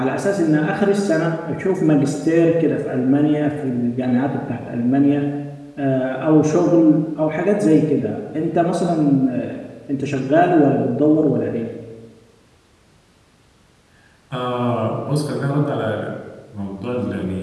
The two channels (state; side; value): identical; both; correlation 1.00